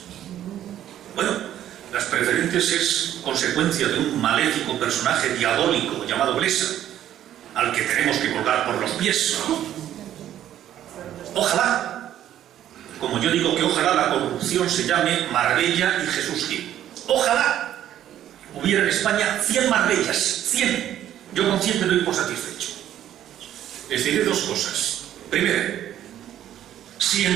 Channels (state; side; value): quieter; left; 11.5 dB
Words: Bueno, las preferentes es consecuencia de un maléfico personaje diabólico llamado Blesa, al que tenemos que colgar por los pies. Ojalá, como yo digo que ojalá la corrupción se llame Marbella y Jesús Gil. Ojalá hubiera en España 100 Marbellas, 100. Yo con 100 me doy por satisfecho. Les diré dos cosas. Primero, si en